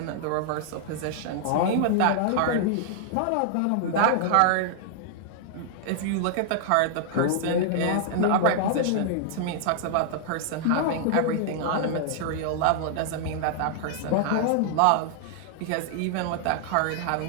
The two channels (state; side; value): different; both; correlation -0.01